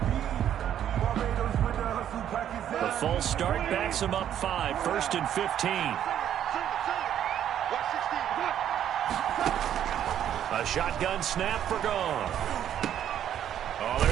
The false start backs him up 5, 1st and 15. A shotgun snap for gone. Oh,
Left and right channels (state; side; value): quieter; left; 10.3 dB